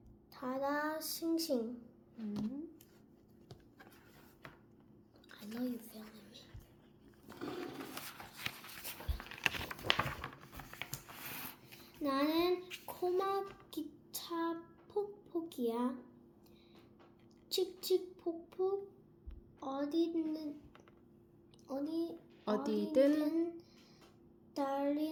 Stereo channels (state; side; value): identical; both; correlation 1.00